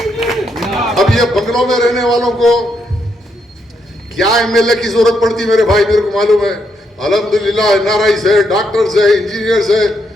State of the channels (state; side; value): normal; both; correlation 0.78